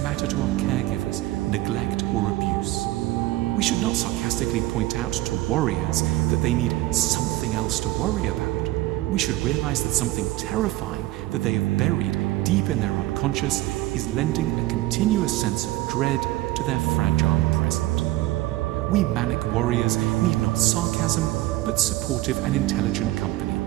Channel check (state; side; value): quieter; left; 17.0 dB